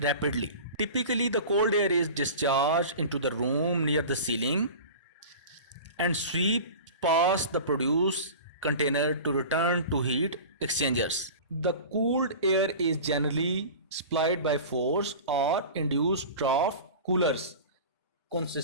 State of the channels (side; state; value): both; inverted; correlation -0.35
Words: rapidly. Typically, the cold air is discharged into the room near the ceiling and sweep past the produce container to return to heat exchangers. The cooled air is generally supplied by forced or induced trough coolers